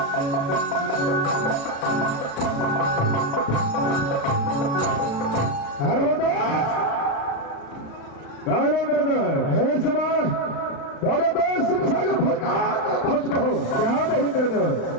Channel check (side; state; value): right; late; 36 ms